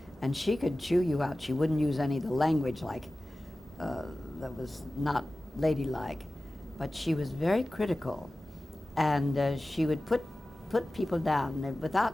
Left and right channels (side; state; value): both; normal; correlation 0.96